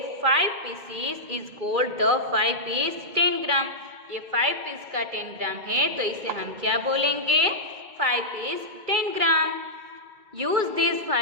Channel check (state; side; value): late; left; 2.4 ms